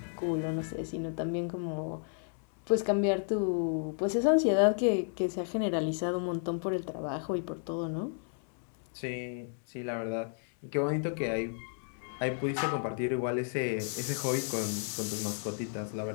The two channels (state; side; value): silent; right; 56 dB below the other